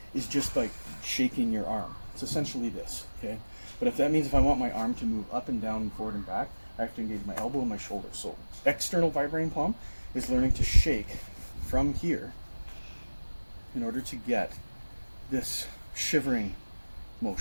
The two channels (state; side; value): inverted; both; correlation -1.00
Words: is just like shaking your arm. It's essentially this, okay? But if that means if I want my arm to move up and down and forward and back, I have to engage my elbow and my shoulder. So external vibrating palm is learning to shake from here in order to get this shivering